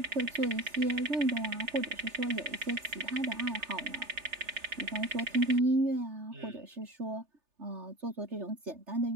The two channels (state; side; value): late; left; 3.3 ms